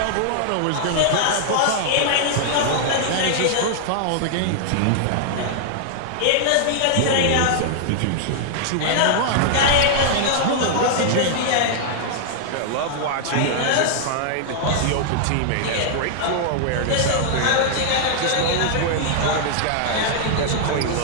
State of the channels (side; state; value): both; different; correlation -0.01